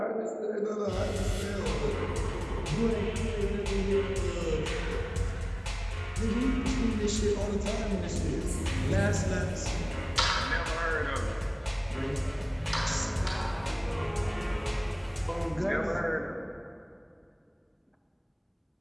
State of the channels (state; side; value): identical; both; correlation 1.00